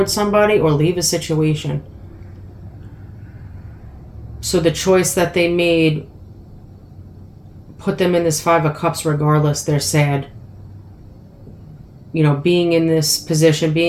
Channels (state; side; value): identical; both; correlation 1.00